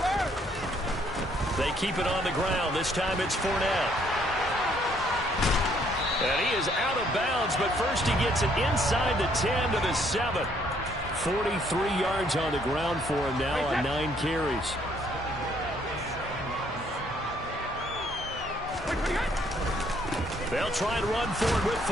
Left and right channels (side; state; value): both; normal; correlation 0.66